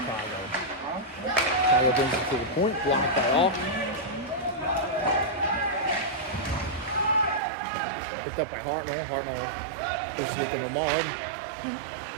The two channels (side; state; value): left; drops out; at 7.4 s